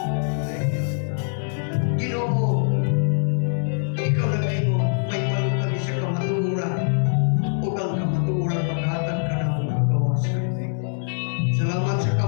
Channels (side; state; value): right; silent; digital silence